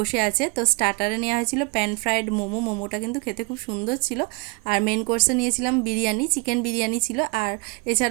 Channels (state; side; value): quieter; left; 27.8 dB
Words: আছে। তো স্টার্টারে নেওয়া হয়েছিল প্যান ফ্রাইড মোমো, মোমোটা কিন্তু খেতে খুব সুন্দর ছিল। আর মেন কোর্সে নিয়েছিলাম বিরিয়ানি, চিকেন বিরিয়ানি ছিল। আর